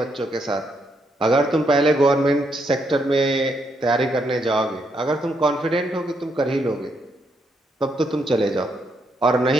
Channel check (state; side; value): normal; both; correlation 0.77